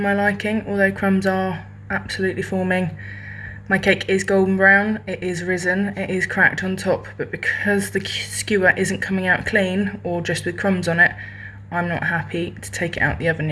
liking, although crumbs are absolutely forming. My cake is golden brown, it is risen, it is cracked on top, but because the skewer isn't coming out clean or just with crumbs on it, I'm not happy to take it out the oven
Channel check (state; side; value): identical; both; correlation 1.00